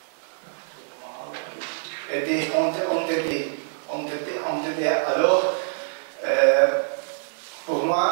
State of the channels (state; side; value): silent; left; 55 dB below the other